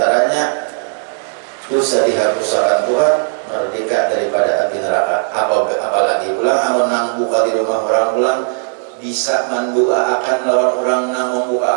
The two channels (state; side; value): silent; left; 64 dB below the other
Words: dosa dihapuskan Tuhan, merdeka daripada api neraka. Apalagi pulang amun nang buka di rumah orang pulang bisa mendoakan lawan orang nang